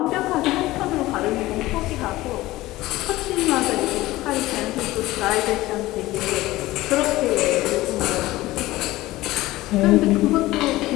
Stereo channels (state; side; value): quieter; right; 17.7 dB